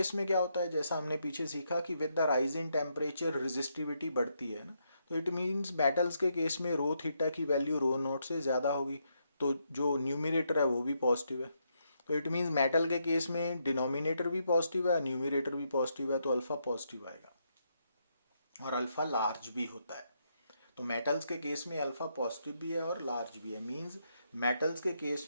में क्या होता है, जैसा हमने पीछे सीखा कि with the rise in temperature resistivity बढ़ती है ना, तो इट मीन्स मेटल्स के केस में रो थीटा की वैल्यू रो नॉट से ज़्यादा होगी, तो जो न्यूमिनेटर है वो भी पॉजिटिव है। तो इट मीन्स मेटल के केस में डिनोमिनेटर भी पॉजिटिव है, न्यूमिनेटर भी पॉजिटिव है, तो अल्फा पॉजिटिव आएगा और अल्फा लार्ज भी होता है। तो मेटल्स के केस में अल्फा पॉजिटिव भी है और लार्ज भी है, मींस मेटल्स के केस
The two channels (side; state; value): both; inverted; correlation -0.78